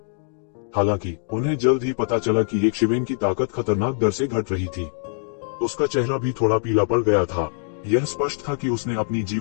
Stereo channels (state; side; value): silent; right; digital silence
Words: हालांकि उन्हें जल्द ही पता चला कि येशिवेन की ताकत खतरनाक दर से घट रही थी। उसका चेहरा भी थोड़ा पीला पड़ गया था। यह स्पष्ट था कि उसने अपनी